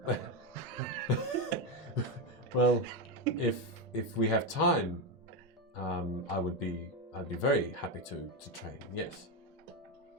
Well, if we have time, I'd be very happy to train. Yes.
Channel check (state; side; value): normal; both; correlation 0.09